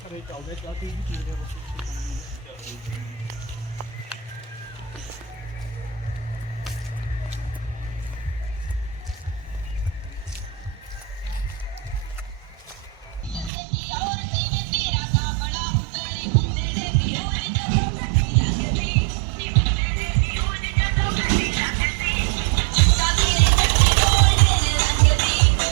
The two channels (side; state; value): left; drops out; at 13.5 s